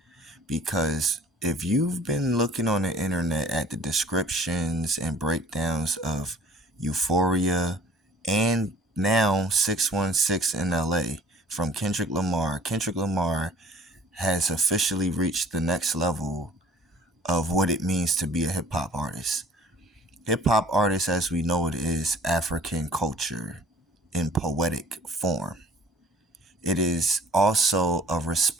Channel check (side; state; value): both; normal; correlation 0.51